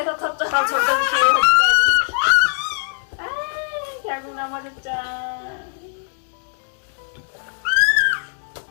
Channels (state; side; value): silent; right; digital silence